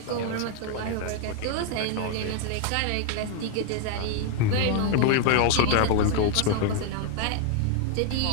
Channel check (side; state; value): both; different; correlation 0.00